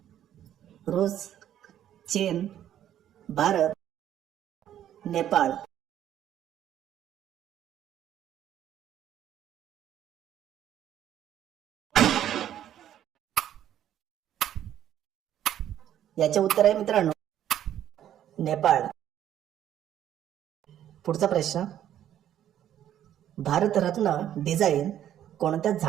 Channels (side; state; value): left; quieter; 11.1 dB